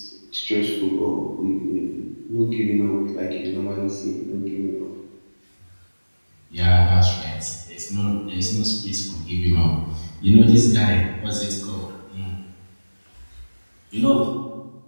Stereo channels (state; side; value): inverted; both; correlation -1.00